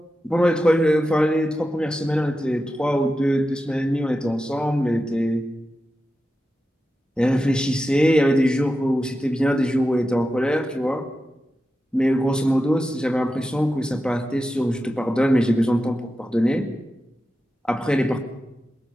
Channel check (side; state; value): both; normal; correlation 0.91